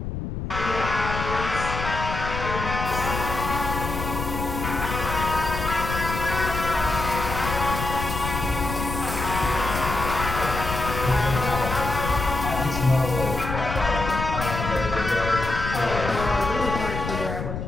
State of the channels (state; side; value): noise; left; rumble, 5 dB below the sound